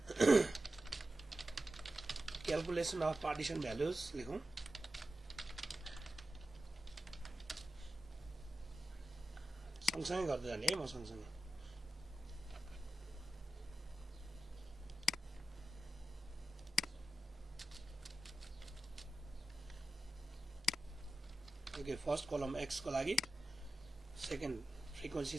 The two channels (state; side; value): normal; both; correlation 0.92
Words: calculation of partition values लेखौँ। सँगसँगै गर्दै जाने है, म सँगसँगै। ओके, फर्स्ट कलम एक्स को लागि, सेकेन्ड